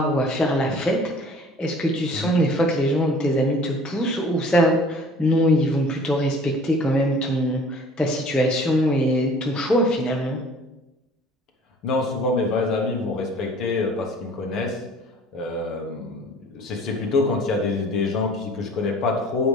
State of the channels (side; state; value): both; normal; correlation 0.50